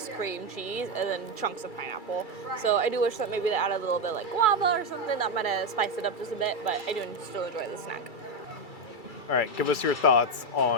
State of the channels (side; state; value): right; late; 2.3 ms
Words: cream cheese and then chunks of pineapple. So I do wish that maybe they added a little bit like guava or something that might have spiced it up just a bit, but I do still enjoy the snack. All right, give us your thoughts